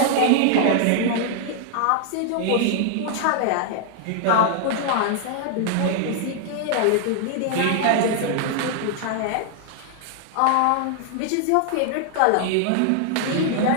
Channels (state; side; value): different; both; correlation 0.00